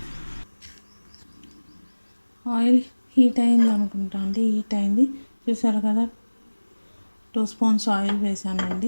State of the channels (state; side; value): inverted; both; correlation -1.00